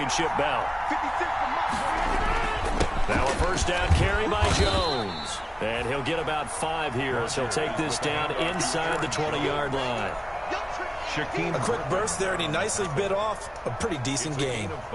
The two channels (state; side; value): identical; both; correlation 1.00